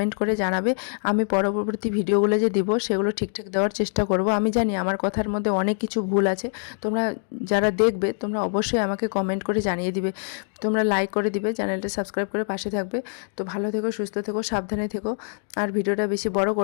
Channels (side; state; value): right; silent; 61 dB below the other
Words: করে জানাবে। আমি পরবর্তী ভিডিওগুলো যে দিব সেগুলো ঠিকঠাক দেওয়ার চেষ্টা করব। আমি জানি আমার কথার মধ্যে অনেক কিছু ভুল আছে, তোমরা যারা দেখবে তোমরা অবশ্যই আমাকে কমেন্ট করে জানিয়ে দিবে, তোমরা লাইক করে দিবে, চ্যানেলটা সাবস্ক্রাইব করে পাশে থাকবে। তো ভালো থেকো, সুস্থ থেকো, সাবধানে থেকো। আর ভিডিওটা বেশি বড়